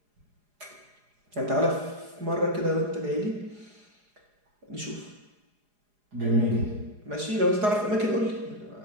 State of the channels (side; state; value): left; late; 4.8 ms